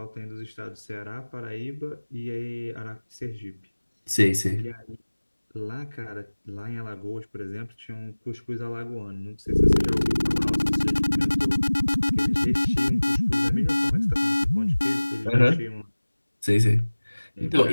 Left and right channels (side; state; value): both; inverted; correlation -1.00